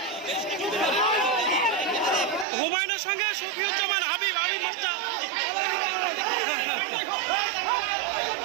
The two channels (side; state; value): left; drops out; at 2.5 s